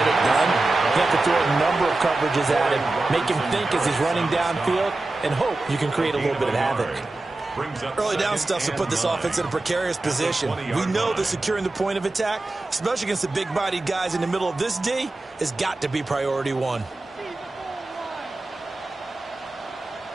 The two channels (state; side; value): quieter; left; 3.0 dB